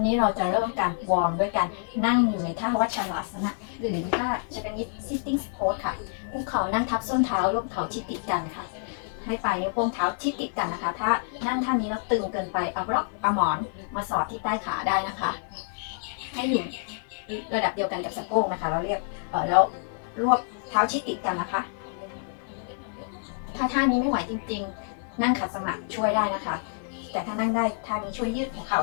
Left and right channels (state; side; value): silent; right; 60 dB below the other